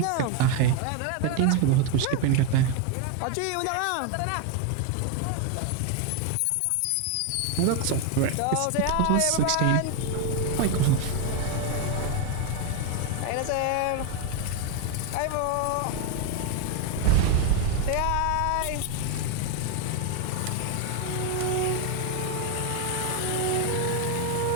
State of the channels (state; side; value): different; both; correlation 0.01